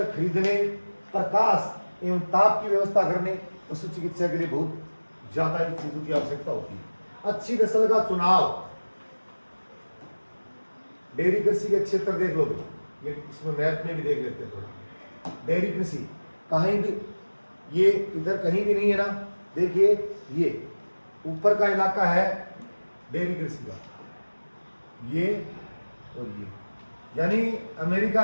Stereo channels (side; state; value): both; inverted; correlation -1.00